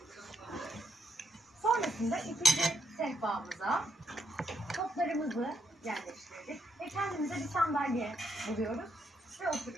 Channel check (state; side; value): normal; both; correlation 0.76